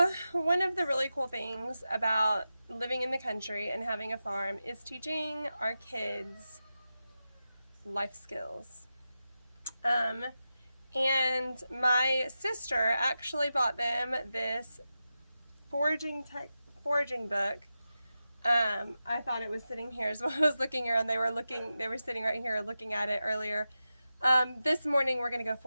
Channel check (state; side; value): inverted; both; correlation -0.91